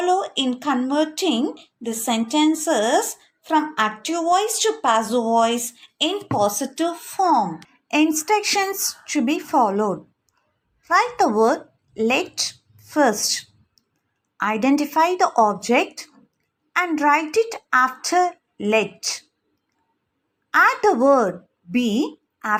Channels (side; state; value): both; identical; correlation 1.00